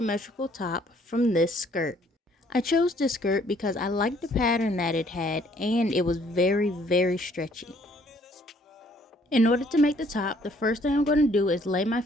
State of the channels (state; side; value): normal; both; correlation 0.63